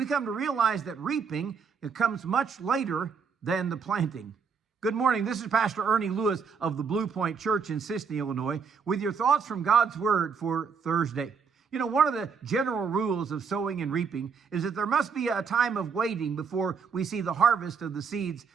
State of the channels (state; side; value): quieter; left; 5.9 dB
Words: come to realize that reaping, it comes much later than the planting. Good morning. This is Pastor Ernie Lewis of the Blue Point Church in Sisney, Illinois, with your thoughts from God's Word for Thursday. You know, one of the general rules of sowing and reaping is that there must be a time of waiting before we see the harvest of the seeds